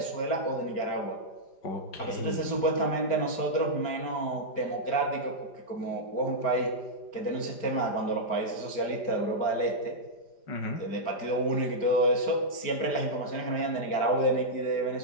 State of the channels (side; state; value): right; late; 5.0 ms